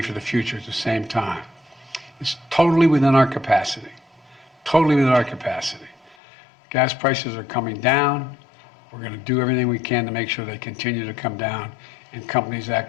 the future at the same time. It's totally within our capacity, totally within our capacity. Gas prices are coming down. We're going to do everything we can to make sure they continue to come down and companies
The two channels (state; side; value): drops out; right; at 6.2 s